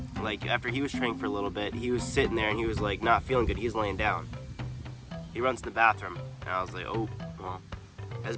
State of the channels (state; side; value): identical; both; correlation 1.00